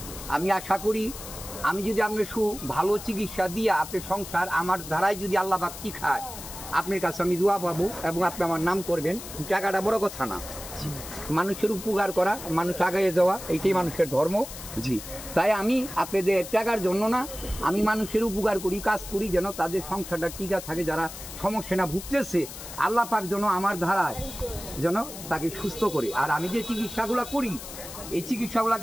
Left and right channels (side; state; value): left; noise; hiss, 12 dB below the sound